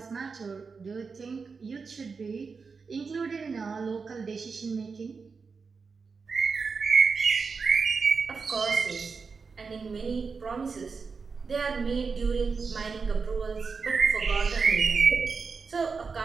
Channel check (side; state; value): left; quieter; 5.0 dB